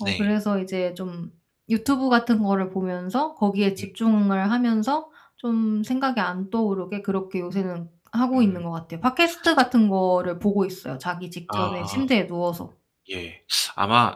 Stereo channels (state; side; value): identical; both; correlation 1.00